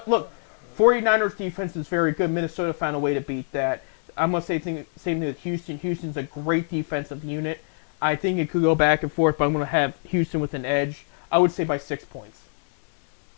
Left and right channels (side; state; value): right; silent; 60 dB below the other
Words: look, 49ers defense is very good. Minnesota found a way to beat that. I'm going to say same thing with Houston. Houston's a great defensive unit. I think it could go back and forth, but I'm going to have Houston with an edge. I would say by 6 points.